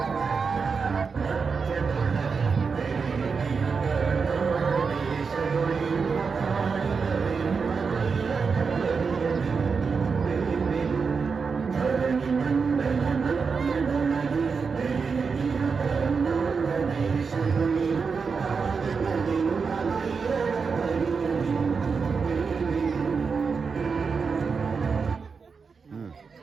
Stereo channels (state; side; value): quieter; left; 5.3 dB